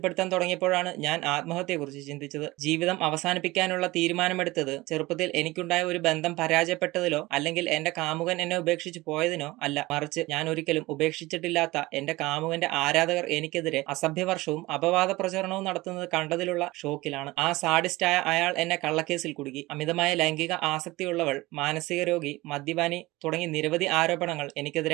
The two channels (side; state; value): left; quieter; 20.2 dB